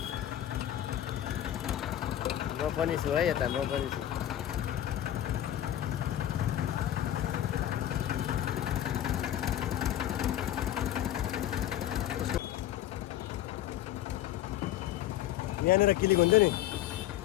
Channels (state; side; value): quieter; right; 12.3 dB